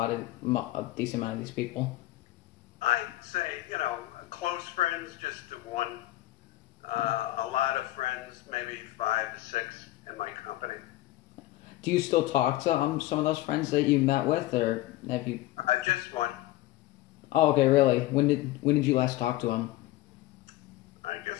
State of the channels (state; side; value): quieter; right; 16.7 dB